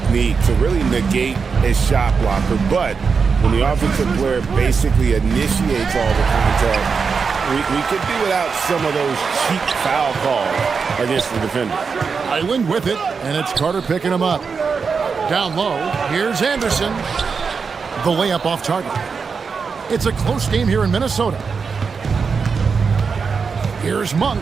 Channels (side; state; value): left; quieter; 5.4 dB